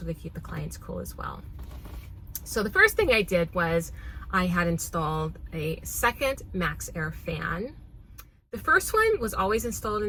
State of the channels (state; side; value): identical; both; correlation 1.00